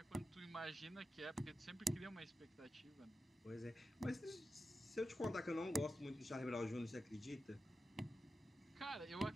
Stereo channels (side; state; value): both; normal; correlation 0.91